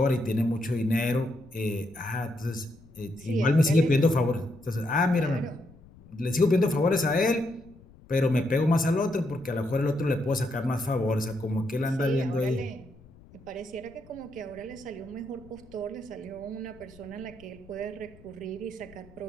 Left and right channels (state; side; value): noise; left; rumble, 23 dB below the sound